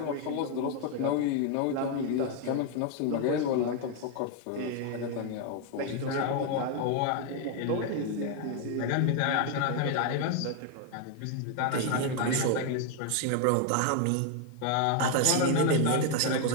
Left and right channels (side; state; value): both; different; correlation 0.01